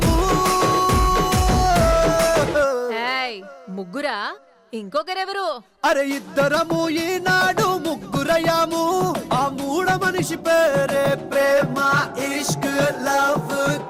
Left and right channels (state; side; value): identical; both; correlation 1.00